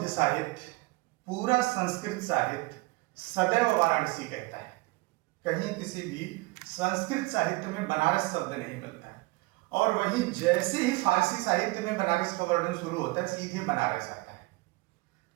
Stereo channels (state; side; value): quieter; left; 22.6 dB